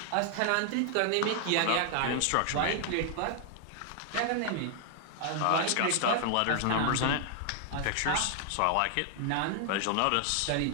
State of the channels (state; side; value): different; both; correlation 0.00